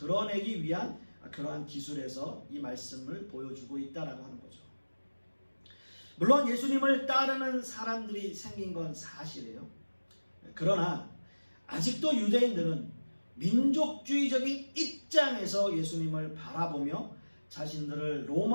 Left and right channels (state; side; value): inverted; both; correlation -1.00